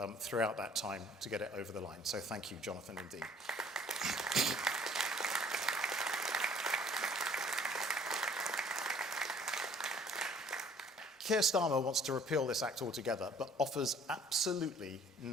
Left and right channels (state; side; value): normal; both; correlation 0.55